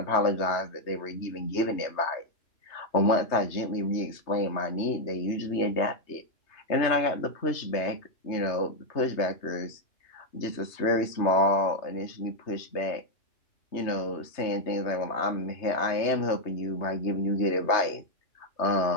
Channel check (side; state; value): right; late; 3.3 ms